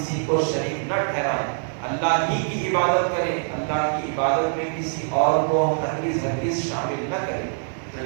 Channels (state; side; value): silent; left; digital silence